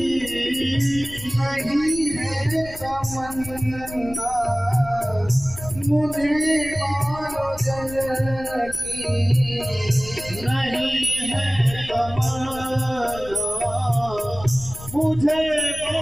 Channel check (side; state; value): left; noise; rumble, 15 dB below the sound